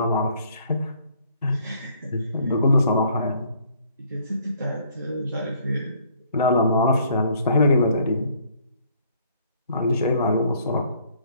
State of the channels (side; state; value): both; inverted; correlation -0.62